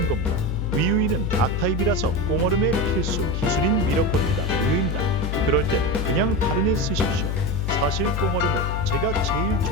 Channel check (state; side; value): noise; left; hum, 1 dB below the sound